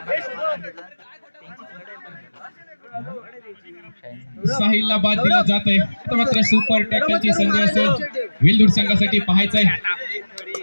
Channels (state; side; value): inverted; both; correlation -1.00